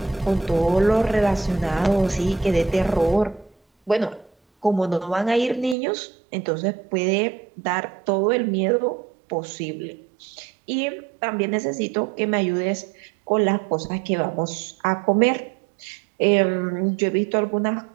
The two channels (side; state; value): left; drops out; at 5.8 s